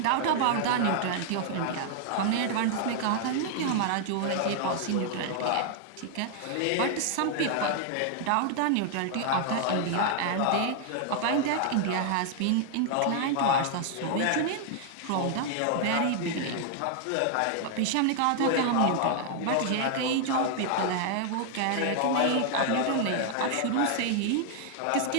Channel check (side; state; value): both; different; correlation 0.00